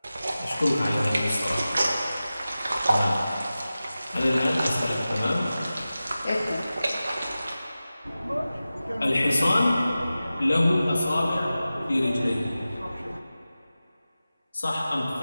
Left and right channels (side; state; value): both; inverted; correlation -0.95